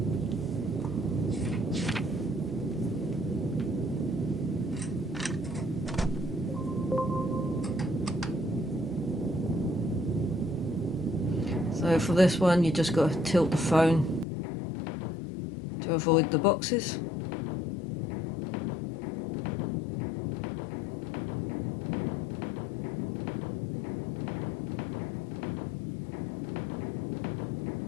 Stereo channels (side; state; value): right; drops out; at 14.2 s